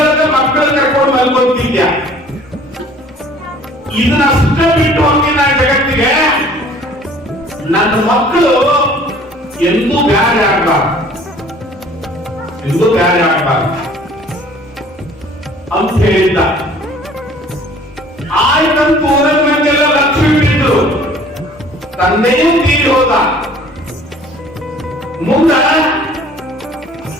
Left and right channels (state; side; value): normal; both; correlation 0.52